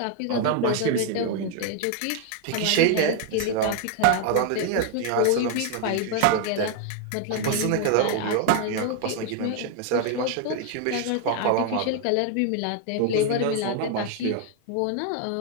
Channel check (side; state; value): both; different; correlation 0.00